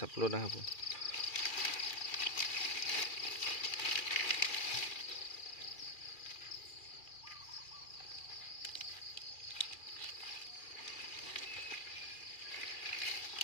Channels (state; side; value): late; right; 2.4 ms